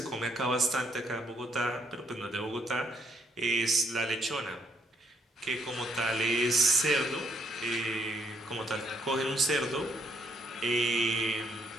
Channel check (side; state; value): both; normal; correlation 0.73